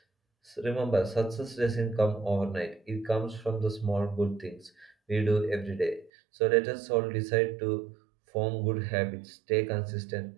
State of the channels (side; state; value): left; drops out; at 6.1 s